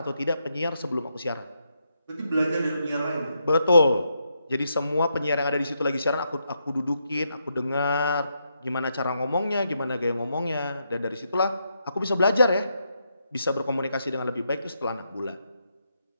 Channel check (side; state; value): both; inverted; correlation -0.81